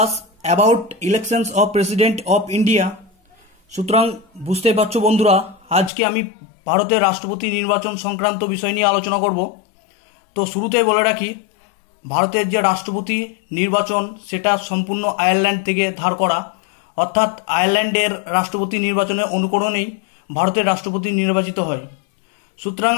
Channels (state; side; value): drops out; right; at 5.9 s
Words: about elections of President of India. সুতরাং বুঝতে পারছো বন্ধুরা, আজকে আমি ভারতের রাষ্ট্রপতি নির্বাচন সংক্রান্ত বিষয় নিয়ে আলোচনা করব। তো শুরুতেই বলে রাখি, ভারতের যে রাষ্ট্রপতি নির্বাচন সেটা সম্পূর্ণ আয়ারল্যান্ড থেকে ধার করা, অর্থাৎ আয়ারল্যান্ডের রাষ্ট্রপতি নির্বাচনের অনুকরণেই ভারতের রাষ্ট্রপতি নির্বাচিত হয়। সুতরাং